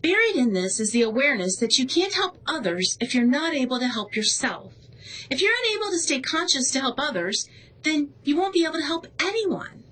Buried in this is the awareness that you can't help others if you're not able to help yourself. If you're unable to stay conscious to help others, then you won't be able to help anyone.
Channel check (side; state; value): both; identical; correlation 1.00